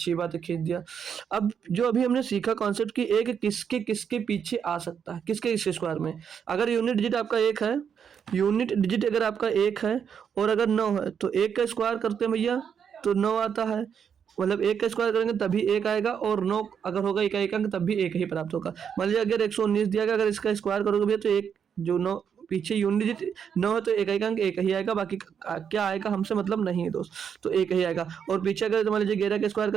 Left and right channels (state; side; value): quieter; left; 7.5 dB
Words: बात है खींच दिया। अब जो अभी हमने सीखा कॉन्सेप्ट कि एक किसके किसके पीछे आ सकता है, किसके इस स्क्वायर में। अगर यूनिट डिजिट आपका 1 है, यूनिट डिजिट अगर आपका 1 है और अगर 9 है, तो 1 का स्क्वायर करते हैं भैया तो 9 आता है, मतलब 1 का स्क्वायर करेंगे तभी 1 आएगा, और 9 अगर होगा इकाई का अंक तब भी 1 ही प्राप्त होगा। मान लीजिए अगर 119 दिया गया, अगर इसका स्क्वायर करोगे भैया तो एक जो 9 पीछे यूनिट डिजिट 9 है तो इकाई का अंक 1 ही आएगा, बाकी क्या आएगा हमसे मतलब नहीं है दोस्त, तो 1 ही आएगा। और पीछे अगर मान लीजिए 11 का स्क्वायर